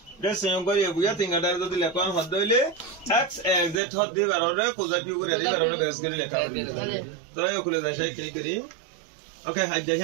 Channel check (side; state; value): left; drops out; at 3.8 s